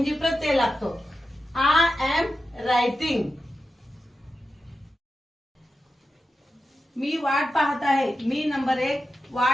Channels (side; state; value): both; normal; correlation 0.91